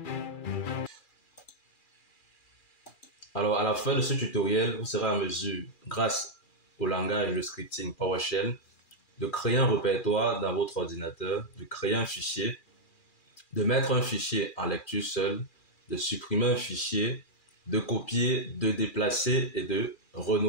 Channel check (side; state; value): right; late; 2.4 ms